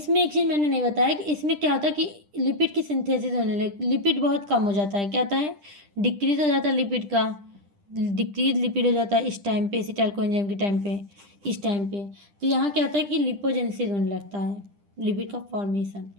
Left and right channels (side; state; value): left; late; 10 ms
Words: एक चीज़ मैंने नहीं बताया कि इसमें क्या होता है कि लिपिड की सिंथेसिस होने लगे, लिपिड बहुत कम हो जाता है। क्या होता है, डिक्रीज हो जाता है लिपिड का, डिक्रीज लिपिड हो जाता है इस टाइम पे, एसिटाइल कोएंजाइम के टाइम पे, इस टाइम पे। तो यहाँ क्या होता है कि लिपोजेनेसिस होने लगता है, लिपिड का फॉर्मेशन।